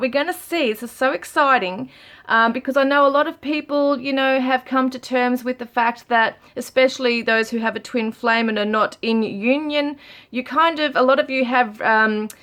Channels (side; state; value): both; identical; correlation 1.00